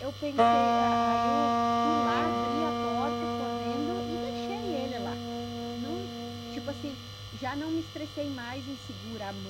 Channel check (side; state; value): both; identical; correlation 1.00